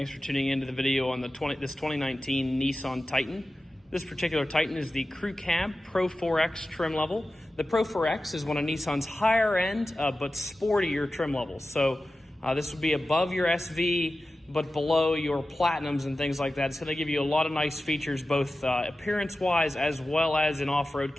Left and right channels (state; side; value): normal; both; correlation 0.94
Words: for tuning into the video on this 2019 Nissan Titan. This particular Titan is the Crew Cab Pro-4X trim level. The Pro-4X is one of Nissan's higher end but sportier trim levels. So this would be above your SV but below your Platinums and things like that. It's going to give you a lot of nice features both appearance-wise as well as in off-road